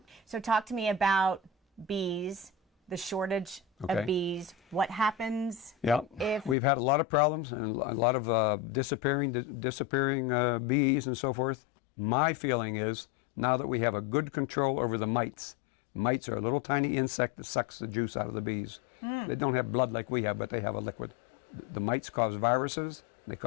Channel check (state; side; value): drops out; right; at 6.6 s